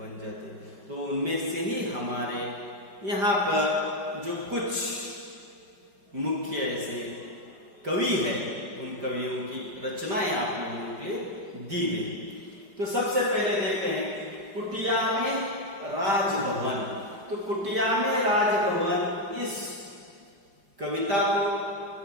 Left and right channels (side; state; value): left; late; 5.1 ms